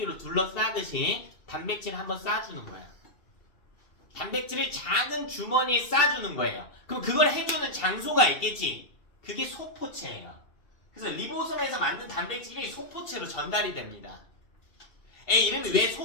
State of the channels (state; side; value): late; right; 2.7 ms